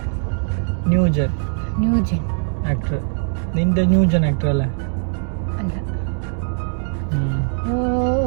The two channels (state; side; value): silent; left; digital silence